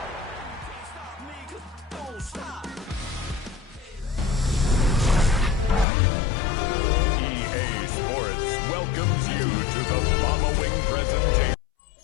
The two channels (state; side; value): drops out; right; at 5.9 s